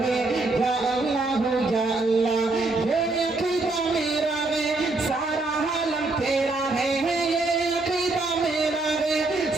है या अल्लाह हो या अल्लाह। ये अकीदा मेरा है, सारा आलम तेरा है, ये अकीदा मेरा है,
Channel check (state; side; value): quieter; left; 3.2 dB